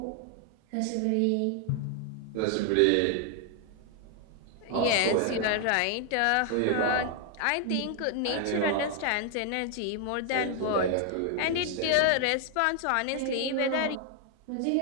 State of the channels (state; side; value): different; both; correlation 0.00